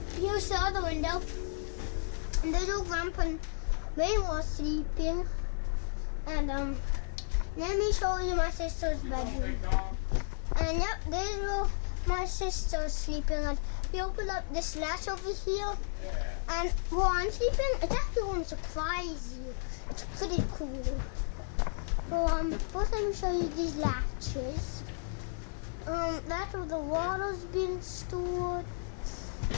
here's the other window. And there's old Grandpa and Mama sleeping. And let me show you my sister's bedroom. And yep, this is where my sister's sleeping. And we open up this latch over here. And while I'm sleeping, it's actually going to surprise you. It's pretty cool. First let me show you these latches. That's where the water's being stored.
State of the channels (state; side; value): silent; right; digital silence